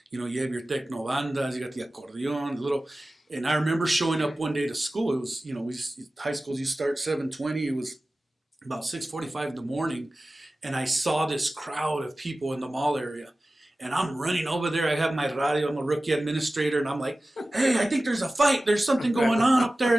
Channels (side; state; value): both; normal; correlation 0.96